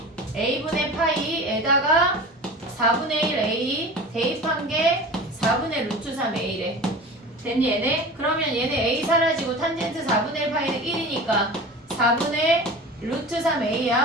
a분의 파이에다가 4분의 1 a 대입한 게 4분의 루트 3 a래. 됐니 얘네? 그러면 얘네 a 사라지고 탄젠트 4분의 1 파이는 1이니까 4분의 루트 3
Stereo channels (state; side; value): normal; both; correlation 0.35